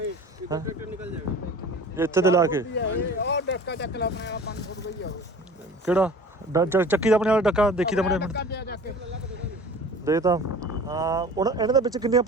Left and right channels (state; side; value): normal; both; correlation 0.42